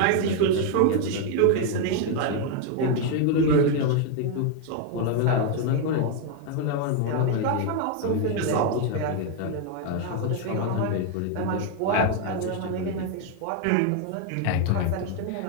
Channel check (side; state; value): both; different; correlation 0.01